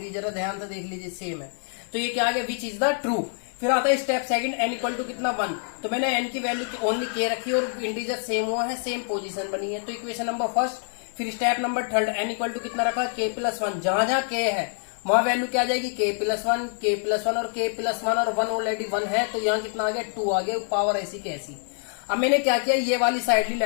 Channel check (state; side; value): silent; right; 58 dB below the other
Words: जरा ध्यान से देख लीजिए सेम है। तो ये क्या आ गया, विच इज द ट्रू। फिर आता है step second, n equal to कितना 1, तो मैंने n की वैल्यू ओनली k रखी और इंटीजर सेम हुआ है, सेम पोजीशन बनी है। तो इक्वेशन नंबर फर्स्ट, फिर step number third, n equal to कितना रखा k प्लस 1, जहां जहां k है वहां वैल्यू क्या आ जाएगी k प्लस 1 और k प्लस 1 और 1 ऑलरेडी 1 है, तो यहाँ कितना आ गया 2 आ गया, पावर ऐसी की ऐसी। अब मैंने क्या किया, ये वाली साइड ली